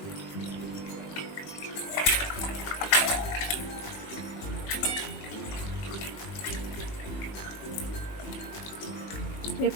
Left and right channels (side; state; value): right; late; 20 ms